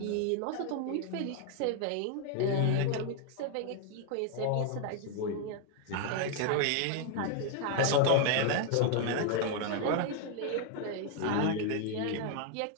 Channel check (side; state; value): both; different; correlation 0.00